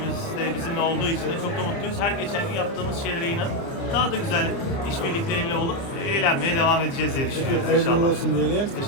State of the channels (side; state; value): right; late; 29 ms